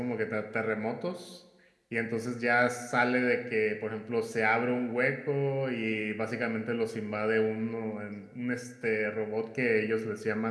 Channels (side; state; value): both; identical; correlation 1.00